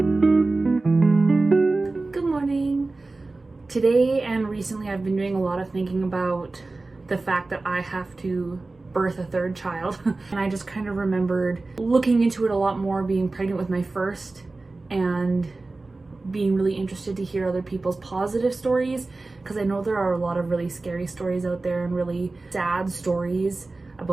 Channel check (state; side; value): quieter; left; 3.4 dB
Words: morning. Today and recently I've been doing a lot of thinking about the fact that I have to birth a third child. And I just kind of remembered looking into it a lot more, being pregnant with my first and being really interested to hear other people's positive stories, because I know there are a lot of really scary stories out there and really sad stories